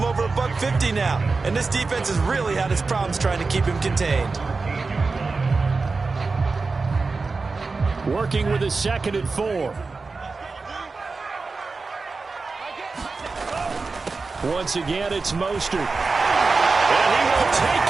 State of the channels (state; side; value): quieter; left; 4.1 dB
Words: over $150 now. And this defense has really had its problems trying to keep him contained. Working with his 2nd and 4. Once again, it's Mostert. And he will